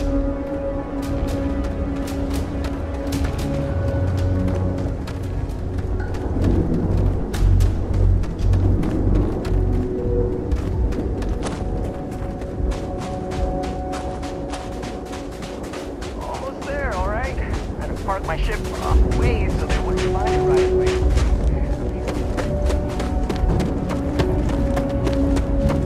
Almost there, all right? I had to park my ship off the way so they wouldn't find it right away.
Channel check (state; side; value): identical; both; correlation 1.00